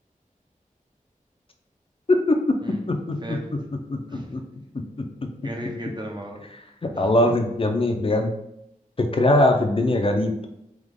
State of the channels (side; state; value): both; normal; correlation 0.67